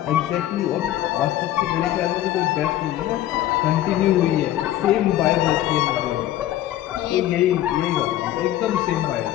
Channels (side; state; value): right; quieter; 13.4 dB